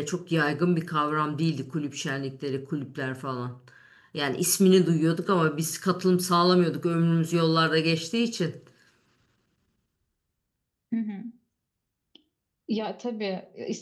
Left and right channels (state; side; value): identical; both; correlation 1.00